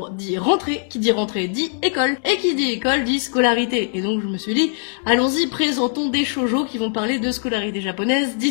dit rentrée dit école et qui dit école dit scolarité. Et donc je me suis dit allons-y, présentons des shoujo qui vont parler de scolarité japonaise,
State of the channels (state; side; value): silent; right; digital silence